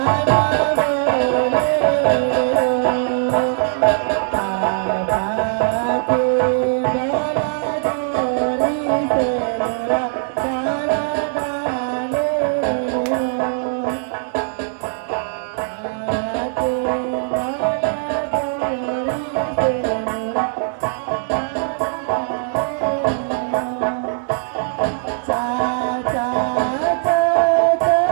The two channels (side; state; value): left; silent; digital silence